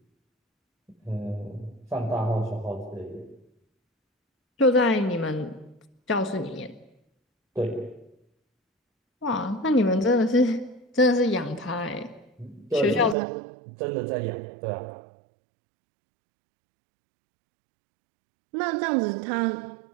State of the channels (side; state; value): left; drops out; at 13.2 s